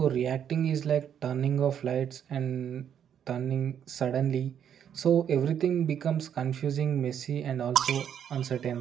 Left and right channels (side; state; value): left; quieter; 8.9 dB